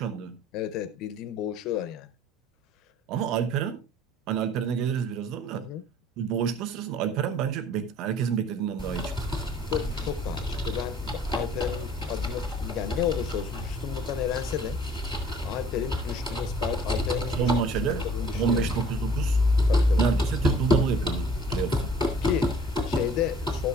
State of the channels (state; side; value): normal; both; correlation 0.53